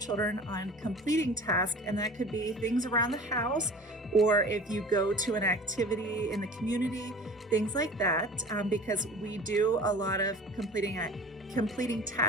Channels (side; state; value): both; normal; correlation 0.41